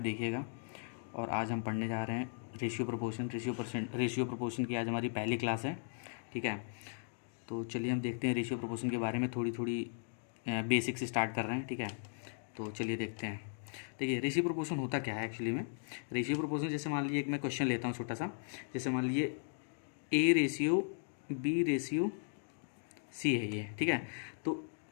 और आज हम पढ़ने जा रहे हैं रेशियो प्रोपोर्शन की आज हमारी पहली क्लास है। ठीक है, तो चलिए हम देखते हैं रेशियो प्रोपोर्शन के बारे में थोड़ी थोड़ी बेसिक से स्टार्ट कर रहे हैं। ठीक है, तो चलिए देखते हैं। देखिए, रेशियो प्रोपोर्शन होता क्या है एक्चुअली में। रेशियो प्रोपोर्शन, जैसे मान लीजिए एक मैं क्वेश्चन लेता हूँ छोटा सा। जैसे मान लीजिए A ratio B ratio C है ये। ठीक है, तो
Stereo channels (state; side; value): silent; right; digital silence